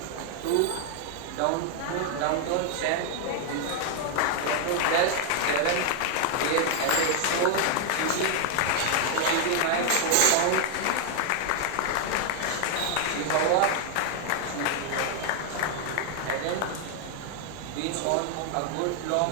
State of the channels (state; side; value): different; both; correlation 0.00